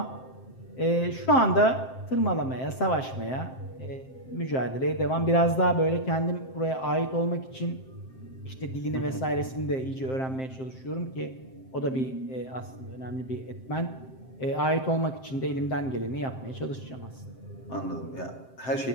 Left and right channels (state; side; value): late; right; 7.6 ms